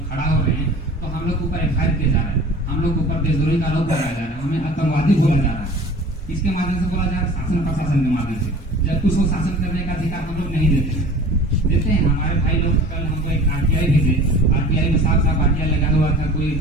खड़ा हो रहे हैं तो हम लोग के ऊपर FIR किया जा रहा है हम लोग के ऊपर देशद्रोही का आरोप लगाया जा रहा है हमें आतंकवादी बोला जा रहा है। इसके माध्यम से बोला जा रहा है शासन प्रशासन के माध्यम से जबकि उसको शासन करने का अधिकार हम लोग नहीं देते हैं। हमारे भाई लोग कल हमको एक RTI भेजे RTI में साफ RTI लगा हुआ था कोई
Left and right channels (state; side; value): normal; both; correlation 0.43